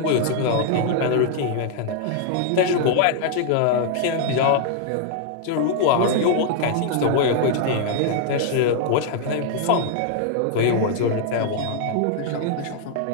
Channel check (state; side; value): different; both; correlation 0.00